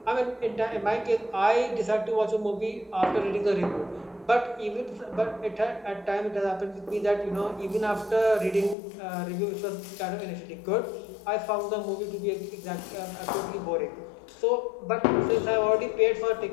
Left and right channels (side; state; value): right; drops out; at 8.8 s